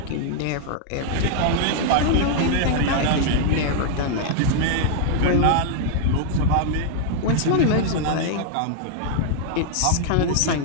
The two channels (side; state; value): both; different; correlation -0.01